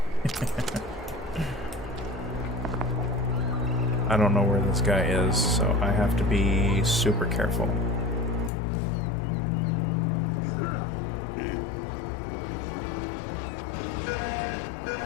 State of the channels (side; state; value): right; drops out; at 8.5 s